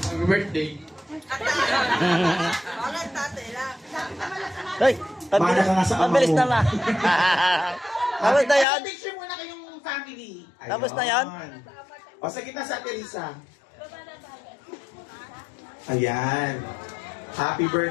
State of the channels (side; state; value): right; drops out; at 8.7 s